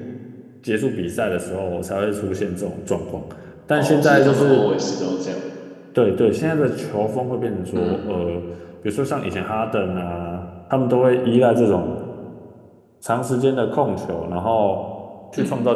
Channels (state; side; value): identical; both; correlation 1.00